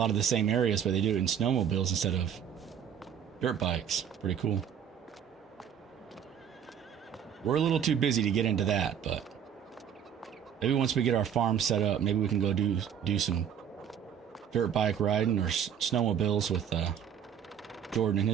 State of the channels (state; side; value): quieter; left; 8.5 dB